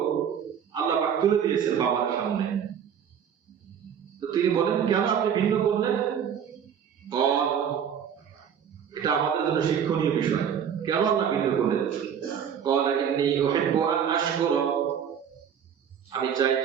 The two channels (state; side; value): quieter; left; 8.2 dB